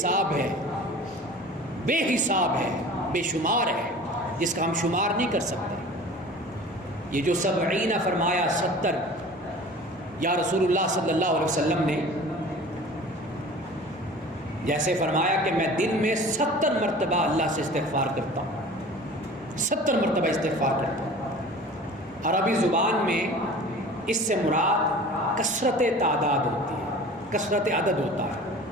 ہے، بے حساب ہے، بے شمار ہے، جس کا ہم شمار نہیں کر سکتے۔ یہ جو 70 فرمایا، 70 یا رسول اللہ صلی اللہ علیہ وسلم نے جیسے فرمایا کہ میں دن میں 70 مرتبہ اللہ سے استغفار کرتا ہوں، 70 مرتبہ استغفار کرتا ہوں۔ عربی زبان میں اس سے مراد کثرت تعداد ہوتی ہے، کثرت عدد ہوتا ہے۔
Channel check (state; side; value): normal; both; correlation 0.42